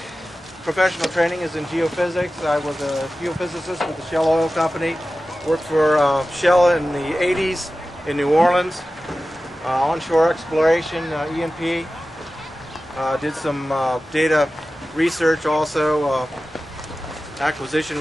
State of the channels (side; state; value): both; normal; correlation 0.95